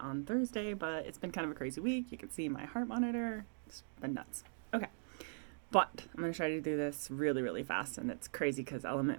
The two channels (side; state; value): left; silent; digital silence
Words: Thursday, but it's been kind of a crazy week. You can see my heart monitor. It's been nuts. Okay. But I'm going to try to do this really, really fast. And it's crazy because